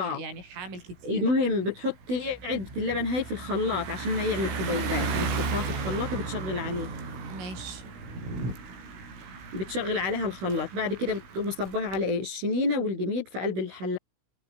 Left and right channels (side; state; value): left; late; 16 ms